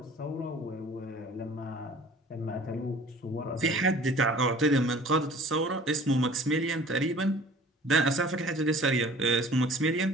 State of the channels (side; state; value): both; normal; correlation 0.48